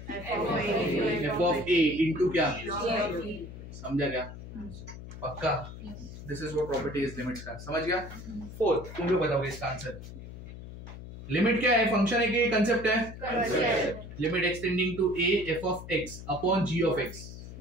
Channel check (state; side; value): noise; left; hum, 12 dB below the sound